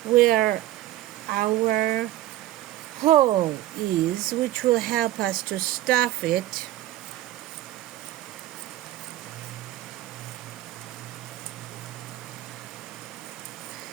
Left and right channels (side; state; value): left; quieter; 14.6 dB